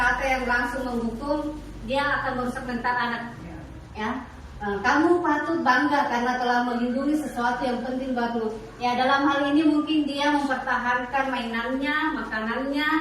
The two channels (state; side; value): identical; both; correlation 1.00